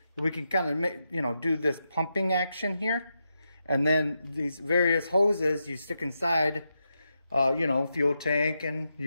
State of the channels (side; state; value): both; inverted; correlation -0.86